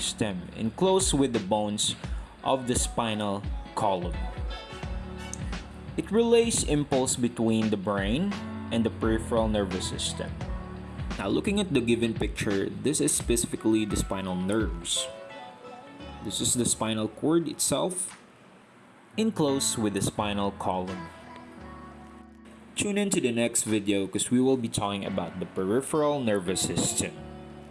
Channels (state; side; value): identical; both; correlation 1.00